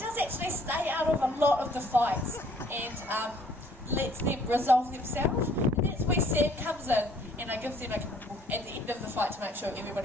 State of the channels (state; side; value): normal; both; correlation 0.60